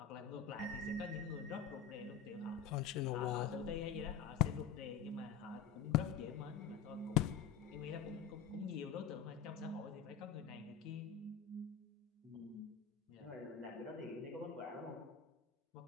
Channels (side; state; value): right; quieter; 7.6 dB